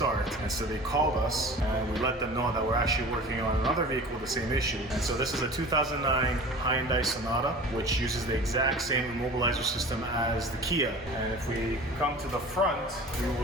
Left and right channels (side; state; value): both; normal; correlation 0.39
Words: And so they called us and we let them know that we're actually working on another vehicle with the same issue. And so this is a 2009 Hyundai Sonata, which uses the exact same immobilizer system as the Kia. And if we come to the front, we